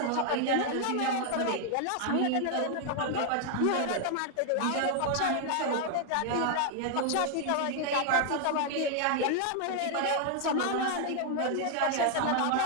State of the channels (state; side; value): different; both; correlation 0.00